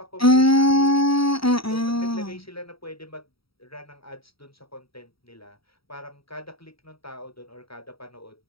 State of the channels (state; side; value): late; right; 0.75 ms